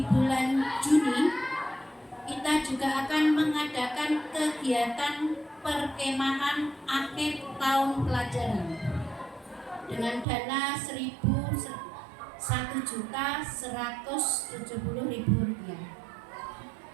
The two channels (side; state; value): left; drops out; at 10.2 s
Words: bulan Juni kita juga akan mengadakan kegiatan perkemahan akhir tahun pelajaran dengan dana Rp1.170.000.